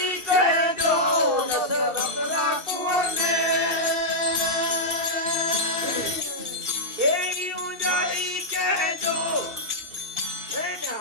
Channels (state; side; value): late; left; 2.7 ms